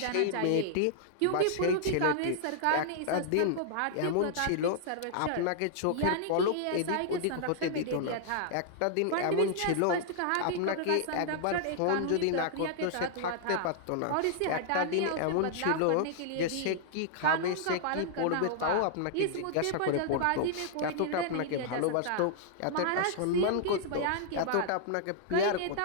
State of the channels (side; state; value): both; different; correlation -0.01